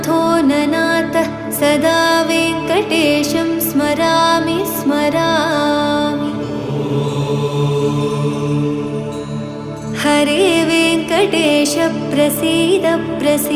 ननाथ सदा वेङ्कटेशं स्मरामि स्मरामि। हरे वेङ्कटेश प्रसीद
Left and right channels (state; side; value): identical; both; correlation 1.00